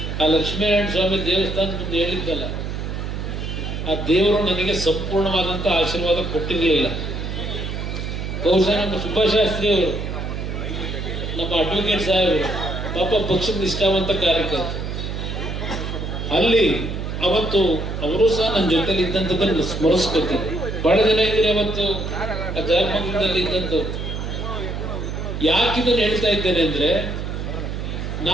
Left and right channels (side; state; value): right; noise; hum, 4 dB below the sound